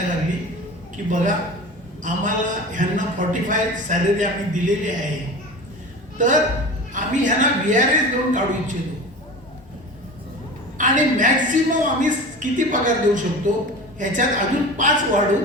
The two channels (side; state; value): both; normal; correlation 0.34